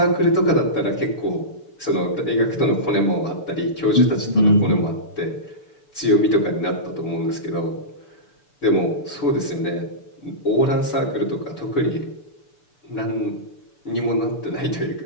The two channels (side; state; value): right; late; 6.9 ms